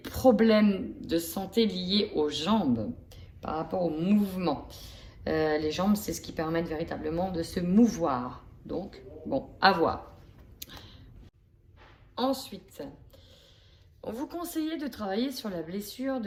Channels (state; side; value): identical; both; correlation 1.00